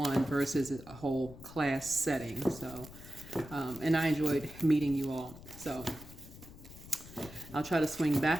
versus a whole class setting. So, and I enjoyed meeting you all. So, I'll try to swing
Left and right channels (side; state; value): left; noise; rumble, 16 dB below the sound